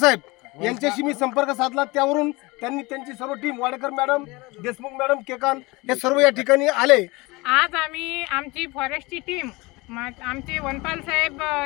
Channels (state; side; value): quieter; right; 23.7 dB